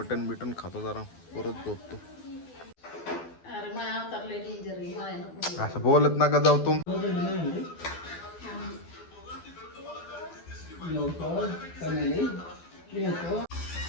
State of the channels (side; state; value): right; late; 12 ms